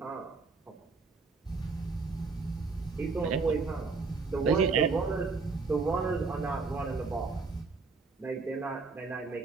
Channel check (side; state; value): left; quieter; 4.3 dB